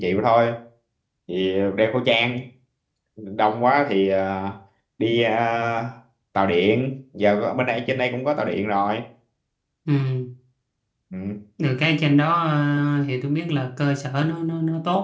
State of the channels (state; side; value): identical; both; correlation 1.00